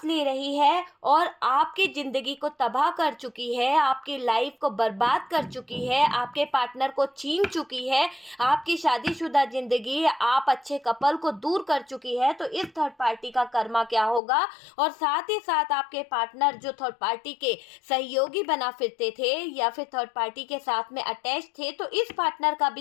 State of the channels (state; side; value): drops out; right; at 14.2 s